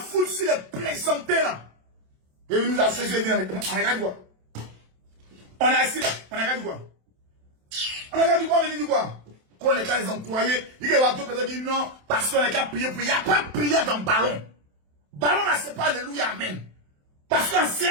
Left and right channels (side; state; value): left; late; 27 ms